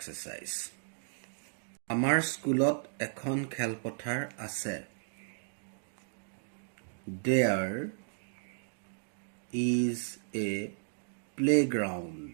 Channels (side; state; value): left; silent; digital silence